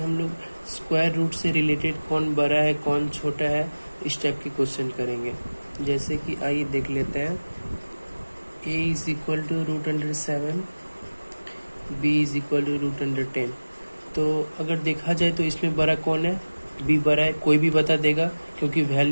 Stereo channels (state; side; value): inverted; both; correlation -1.00